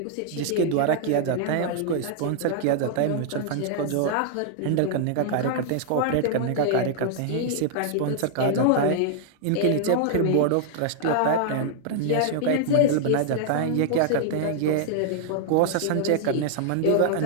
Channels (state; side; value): different; both; correlation -0.01